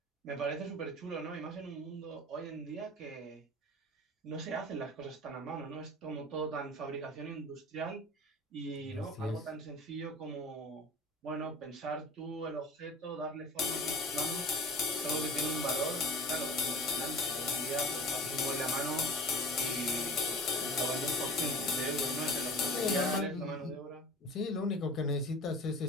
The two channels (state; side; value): normal; both; correlation 0.39